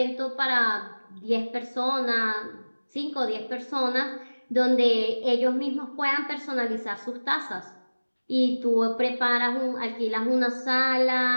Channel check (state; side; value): inverted; both; correlation -1.00